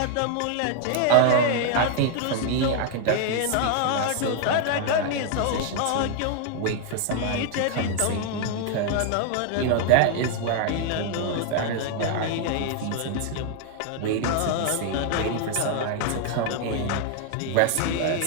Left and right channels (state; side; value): different; both; correlation 0.00